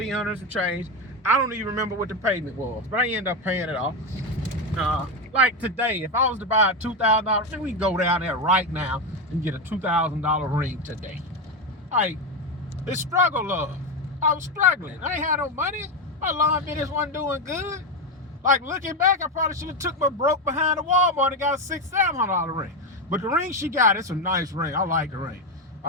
for change. I don't even remember what the payment was, but I ended up paying it off. Like today, if I was to buy a $2,000, then we can go down there right now and get a $2,000 ring today. Like, it's struggle love. I was struggling. I ain't had no money. My lawn business wasn't doing good. Like, looking back, I probably should have took my broke behind the Walmart and got a $600-$700 ring. But the ring she got, it's a nice ring. I like the ring.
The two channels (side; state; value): both; normal; correlation 0.11